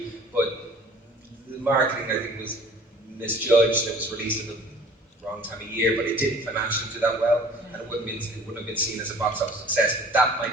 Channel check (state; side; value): normal; both; correlation 0.49